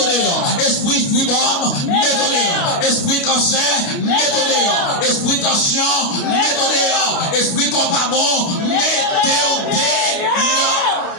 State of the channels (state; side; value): late; right; 29 ms